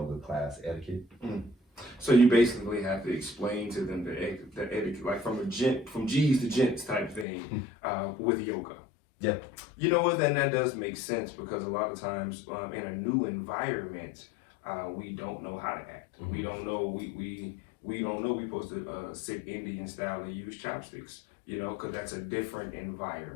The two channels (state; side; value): drops out; right; at 7.2 s